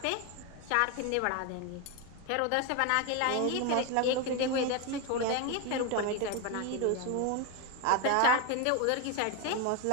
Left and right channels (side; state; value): both; different; correlation 0.02